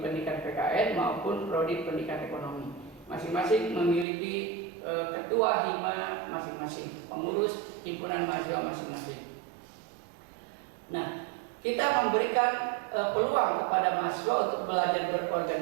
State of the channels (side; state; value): left; drops out; at 4.0 s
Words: PKN maupun prodi pendidikan ekonomi. Masing-masing memiliki ketua hima masing-masing, pengurus himpunan mahasiswa masing-masing. Nah, kita memberikan peluang kepada mahasiswa untuk belajar